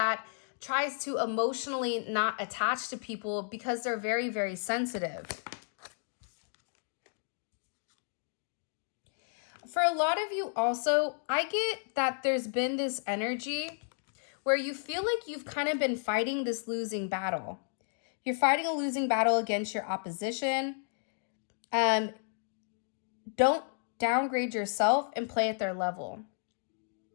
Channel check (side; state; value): right; silent; digital silence